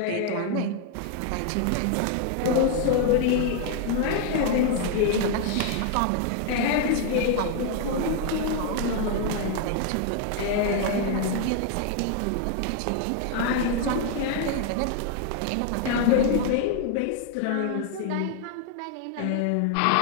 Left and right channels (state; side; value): different; both; correlation 0.00